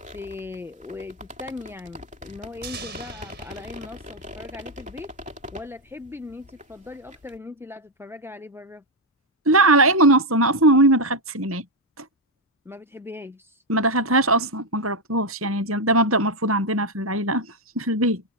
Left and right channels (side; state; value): both; normal; correlation 0.03